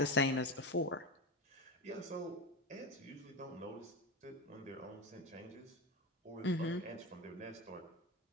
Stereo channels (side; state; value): both; normal; correlation 0.20